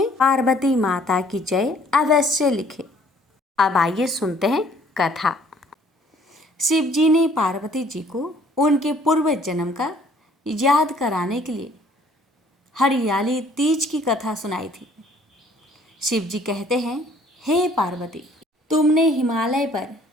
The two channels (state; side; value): normal; both; correlation 0.59